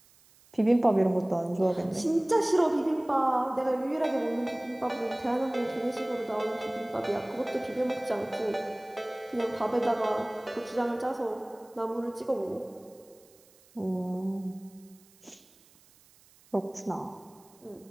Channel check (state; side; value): noise; right; hiss, 28 dB below the sound